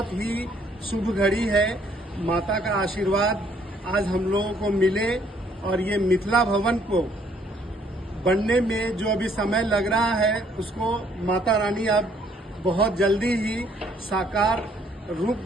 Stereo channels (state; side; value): normal; both; correlation 0.65